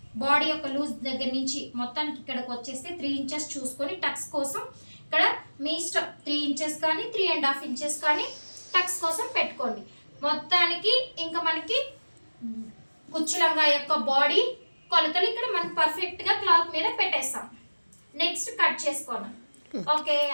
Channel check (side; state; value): both; inverted; correlation -1.00